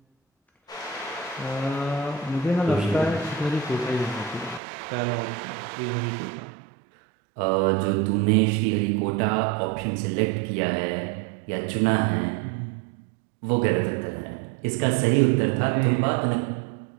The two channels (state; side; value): drops out; left; at 4.6 s